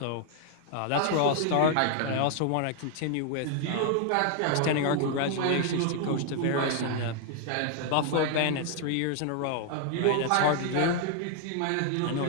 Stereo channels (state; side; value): different; both; correlation 0.00